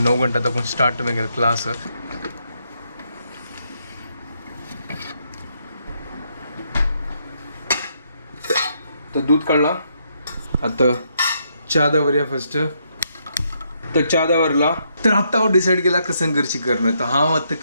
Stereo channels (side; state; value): both; inverted; correlation -0.76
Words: घंटा दाखोवन स्टार्ट म्हगेलो क्लास. तर दूध काढला. आता च्या दवरया फर्स्ट. तर च्या दवरला. तर आत्ता हांव डिसायड केला कसं करची करणं. तर हांव आतां